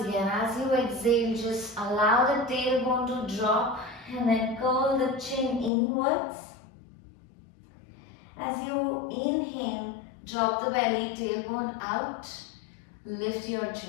as you exhale, just allow the tailbone to drop and then curl the chin inwards. As you inhale, drop the belly, tailbone out, lift your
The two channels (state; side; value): drops out; right; at 5.7 s